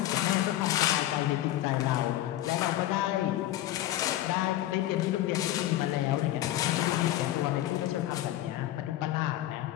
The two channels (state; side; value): quieter; right; 14.0 dB